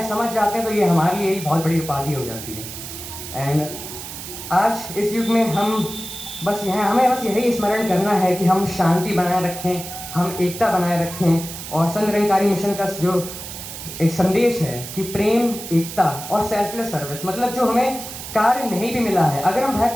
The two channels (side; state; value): right; noise; hiss, 10 dB below the sound